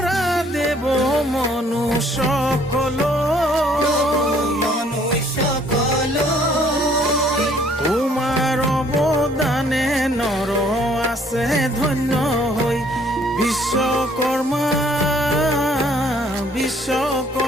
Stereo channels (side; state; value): both; normal; correlation 0.61